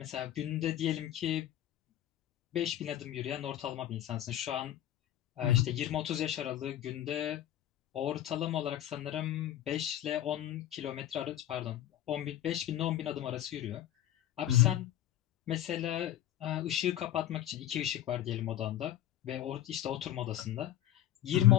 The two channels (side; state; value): right; quieter; 12.5 dB